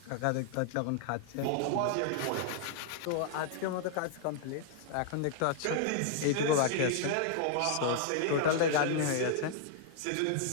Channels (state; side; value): different; both; correlation -0.01